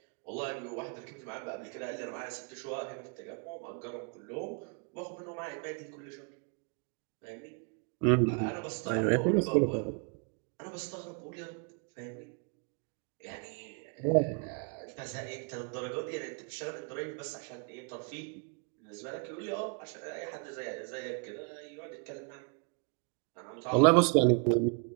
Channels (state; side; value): quieter; left; 38.2 dB